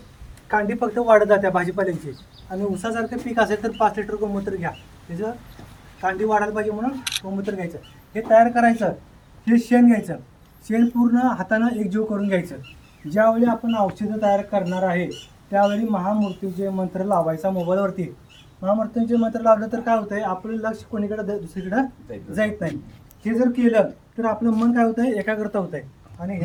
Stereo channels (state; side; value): identical; both; correlation 1.00